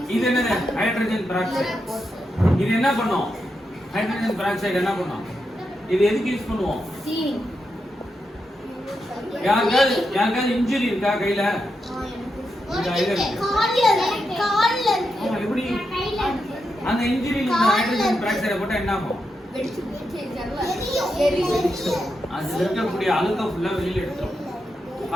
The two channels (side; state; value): both; normal; correlation 0.86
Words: இது என்னது? Hydrogen peroxide. இது என்ன பண்ணும்? ஹைட்ரஜன் பெராக்சைடு என்ன பண்ணும்? இது எதுக்கு யூஸ் பண்ணுவோம்? சீனி யாருக்காவது இன்ஜுரி இருக்கா கையில? கால்ல ஆமா, எப்படி அந்த இன்ஜுரியில இந்த ஹைட்ரஜன் பெராக்சைடை போட்டா என்ன ஆகும்? அது இருக்கக்கூடிய அழுக்க ஃபுல்லா வெளியில எடுத்துரும்.